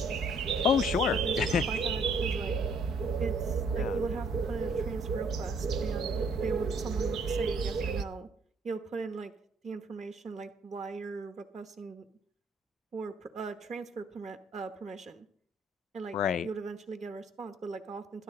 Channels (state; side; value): normal; both; correlation 0.62